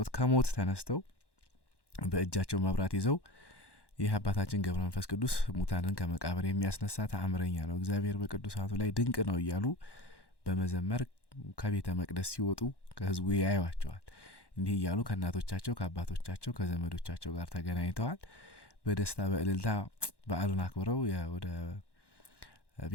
ከሞት ተነስተው በእጃቸው መብራት ይዘው ይህ አባታችን ገብረ መንፈስ ቅዱስ ሙታንን ከመቃብር የሚያስነሳ ተአምረኛ ነው፣ እግዚአብሔር በቅዱሳቱ ላይ ድንቅ ነው እያሉ በመዘመር ከቤተ መቅደስ ሲወጡ ከህዝቡ ያዩዋቸዋል። እንዲህ እያሉ ከእናቶቻቸው ከአባቶቻቸው ከዘመዶቻቸው ጋር ተገናኝተዋል። በደስታ በእልልታ በዓሉን አክብረው ወደ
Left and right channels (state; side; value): late; right; 1.1 ms